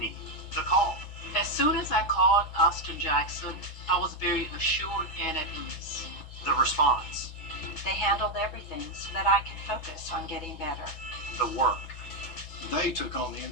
need. The call. As soon as I called Austin Jackson, I was very assured and at ease. The response. They handled everything so that I could focus on getting better. The work. They took on the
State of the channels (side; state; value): right; late; 6.6 ms